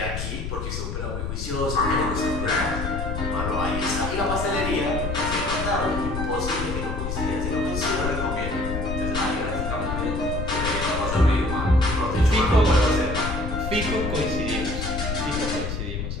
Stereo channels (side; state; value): left; noise; rumble, 4 dB below the sound